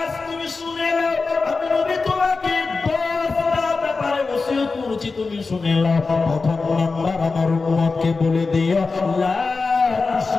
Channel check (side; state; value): right; quieter; 4.2 dB